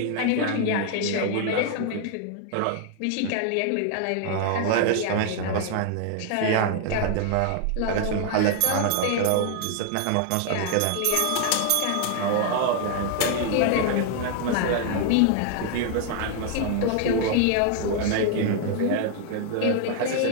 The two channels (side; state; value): both; different; correlation 0.00